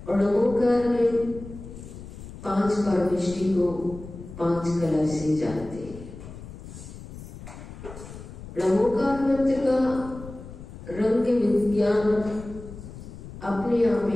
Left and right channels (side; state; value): left; noise; rumble, 13 dB below the sound